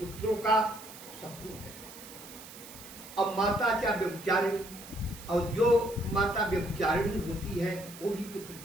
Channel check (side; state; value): right; noise; hiss, 16 dB below the sound